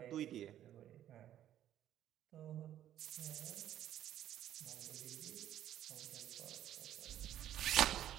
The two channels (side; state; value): left; quieter; 11.6 dB